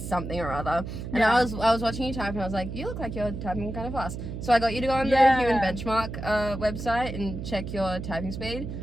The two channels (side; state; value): right; noise; hum, 7 dB below the sound